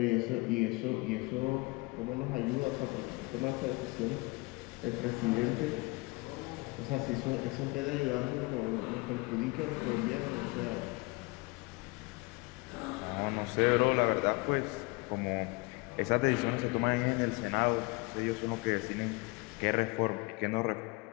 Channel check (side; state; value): right; quieter; 26.0 dB